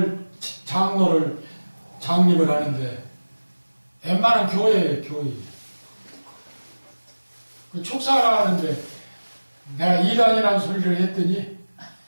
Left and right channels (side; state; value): both; inverted; correlation -1.00